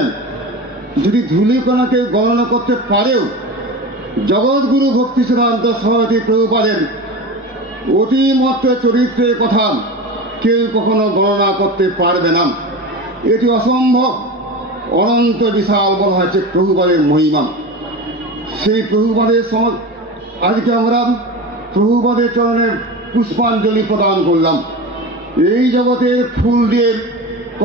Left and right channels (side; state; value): both; normal; correlation 0.28